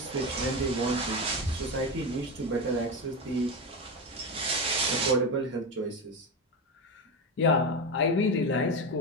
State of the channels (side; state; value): both; normal; correlation 0.16